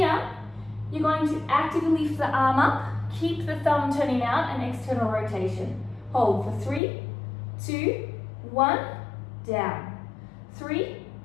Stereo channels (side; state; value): right; drops out; at 6.8 s